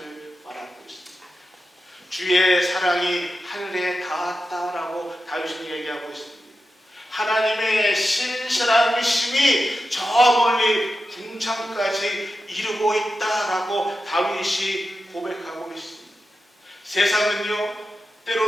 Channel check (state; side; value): normal; both; correlation 0.91